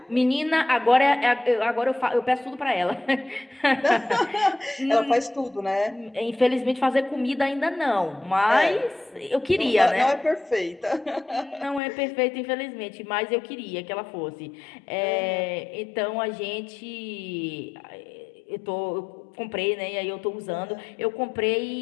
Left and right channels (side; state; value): right; drops out; at 11.8 s